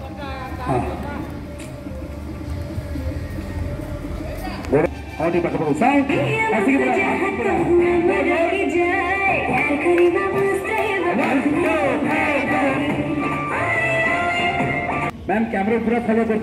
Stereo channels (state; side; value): identical; both; correlation 1.00